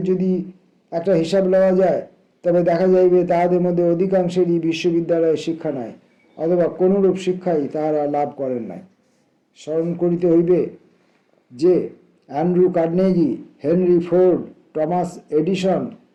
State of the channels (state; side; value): identical; both; correlation 1.00